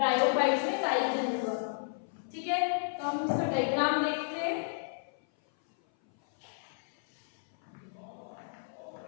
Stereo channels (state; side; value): silent; right; 56 dB below the other